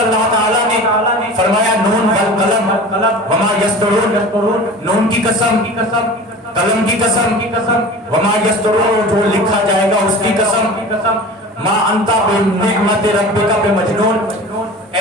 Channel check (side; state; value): both; normal; correlation 0.37